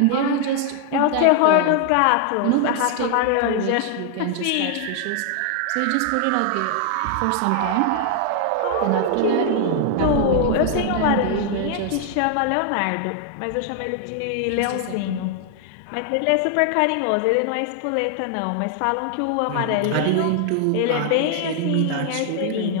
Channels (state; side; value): different; both; correlation 0.00